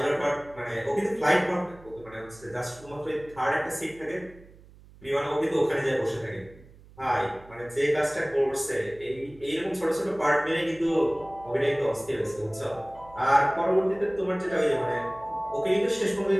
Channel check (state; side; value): noise; right; hum, 23 dB below the sound